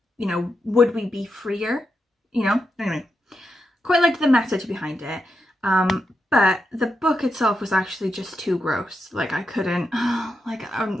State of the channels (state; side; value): normal; both; correlation 0.86